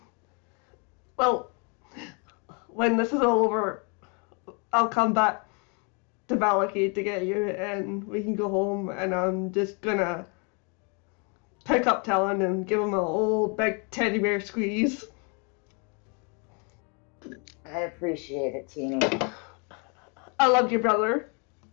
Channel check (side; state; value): right; quieter; 35.2 dB